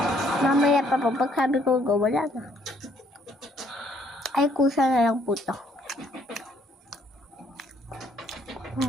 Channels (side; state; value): both; normal; correlation 0.66